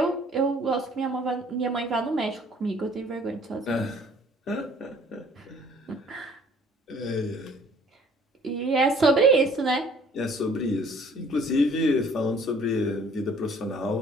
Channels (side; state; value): both; normal; correlation 0.56